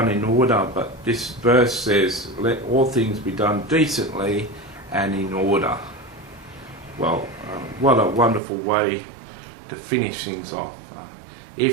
in order, but this verse says let all things be done decently and in order. Well, what a wonderful way to finish things off.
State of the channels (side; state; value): left; drops out; at 8.4 s